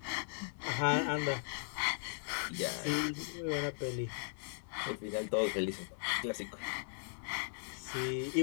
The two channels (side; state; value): right; silent; digital silence